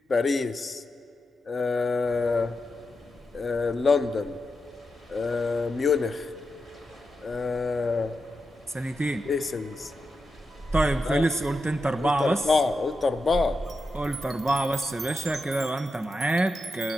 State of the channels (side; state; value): both; normal; correlation 0.88